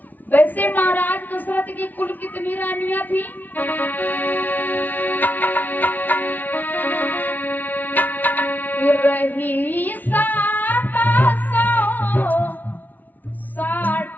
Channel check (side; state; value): right; late; 0.082 ms